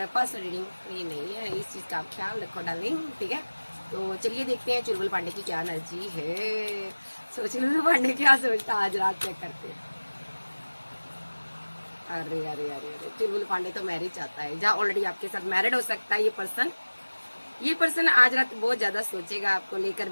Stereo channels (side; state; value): both; inverted; correlation -1.00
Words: पर्सनल रीडिंग फ्री नहीं है, इस चीज का आप ख्याल रखो डार्लिंग। ठीक है, तो चलिए देखते हैं चुलबुल पांडे की क्या एनर्जी है। सो चुलबुल पांडे क्या सोचता आज रात चेक करते हैं। अरे अरे अरे अरे, चुलबुल पांडे तो मैरिज चाहता है, जहाँ ऑलरेडी आपके साथ मैरिड हो सकता है ये पर्सन आज रात बहुत ज्यादा सोचेगा आपको लेकर,